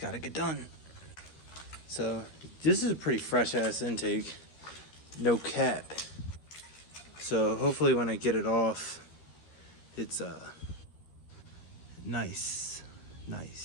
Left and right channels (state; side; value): late; right; 13 ms